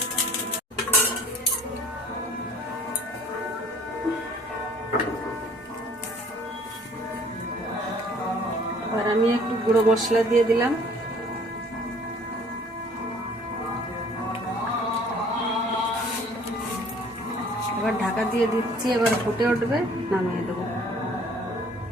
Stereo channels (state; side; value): normal; both; correlation 0.54